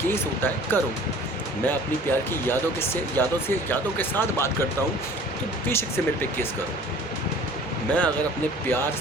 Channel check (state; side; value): normal; both; correlation 0.48